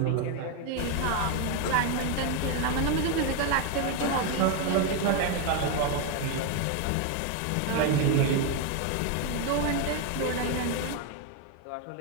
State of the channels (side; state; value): both; different; correlation 0.01